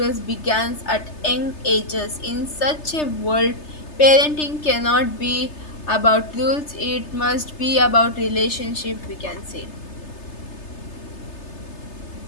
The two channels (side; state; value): right; late; 3.3 ms